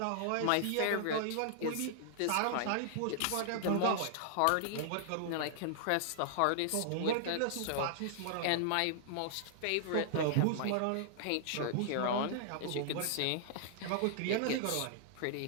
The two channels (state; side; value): different; both; correlation -0.01